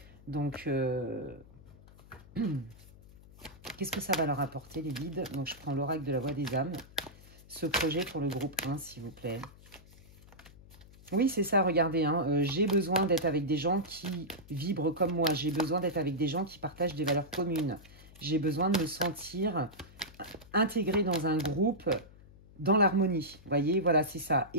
Donc, qu'est-ce que ça va leur apporter, les guides? Donc, je prends l'oracle de la voix des âmes. Ce projet pour le groupe 1, s'il vous plaît. Oui, c'est ça, regardez, hein, j'ai besoin d'être avec des gens qui vibrent comme moi. J'ai besoin d'être avec des gens qui partagent des valeurs communes. J'ai besoin de me sentir intégré dans un groupe, dans l'harmonie. Vous voyez, voilà, c'est ça.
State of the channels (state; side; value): noise; left; hum, 22 dB below the sound